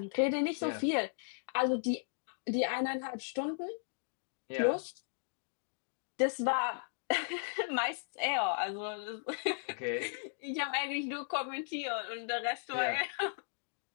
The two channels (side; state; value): right; silent; digital silence